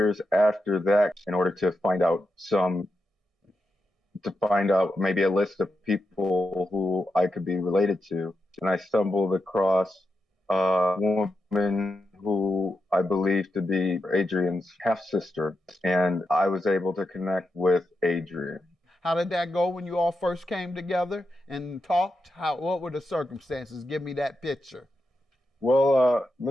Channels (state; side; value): normal; both; correlation 0.86